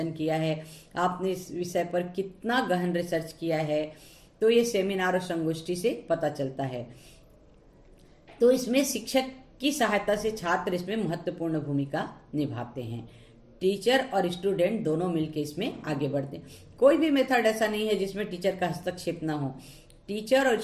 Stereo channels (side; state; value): both; identical; correlation 1.00